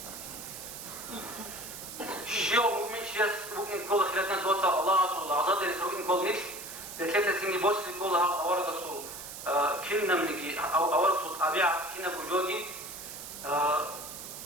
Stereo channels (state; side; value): noise; right; hiss, 10 dB below the sound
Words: شيء مؤمن شيء ممكن كل خلال ناس وصل الله صلى الله عليه وسلم ممكن كل نفس بثلاثة سنين بوس كلها أورد الصل كنا منجي أو أورد صوت أبيع كنا بوجودي